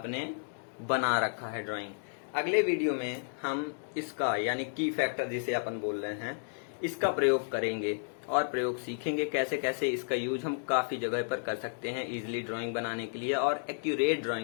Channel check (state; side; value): silent; right; digital silence